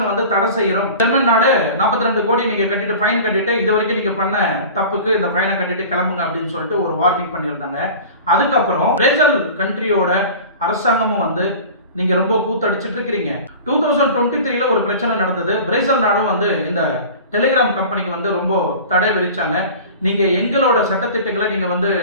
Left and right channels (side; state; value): both; inverted; correlation -0.38